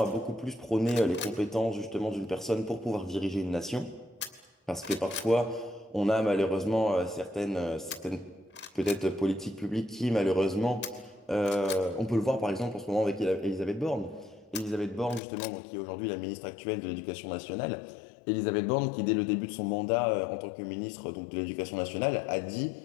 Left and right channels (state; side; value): drops out; right; at 15.2 s